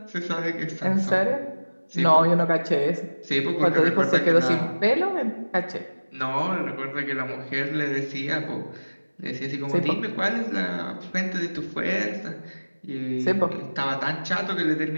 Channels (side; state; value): both; inverted; correlation -1.00